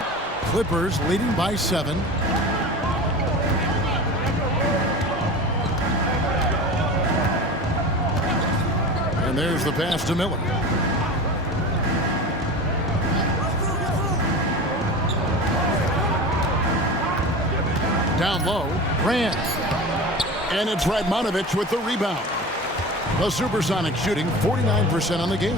Clippers leading by 7. And there's the pass to Miller. Down low, Grant. And it's Radmanovic with the rebound. The SuperSonics shooting 49% on the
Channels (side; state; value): both; normal; correlation 0.32